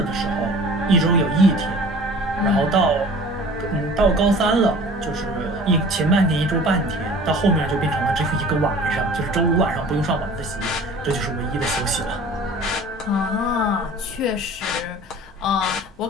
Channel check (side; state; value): both; normal; correlation 0.45